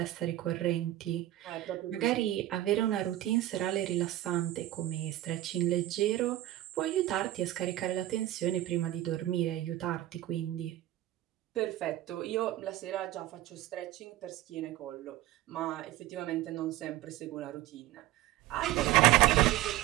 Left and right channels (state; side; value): quieter; left; 14.9 dB